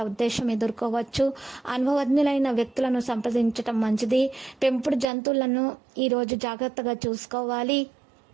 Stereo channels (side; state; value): left; drops out; at 5.1 s